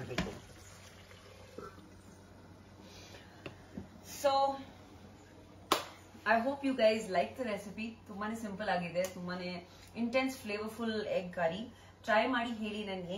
So I hope you guys like the recipe. ತುಂಬಾನೇ ಸಿಂಪಲ್ ಆಗಿದೆ, ತುಂಬಾನೇ intense flavourful egg curry. Try ಮಾಡಿ ಹೇಳಿ ನನ್ಗೆ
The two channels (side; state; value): both; identical; correlation 1.00